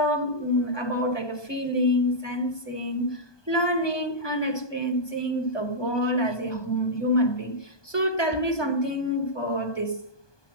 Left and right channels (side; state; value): right; late; 1.2 ms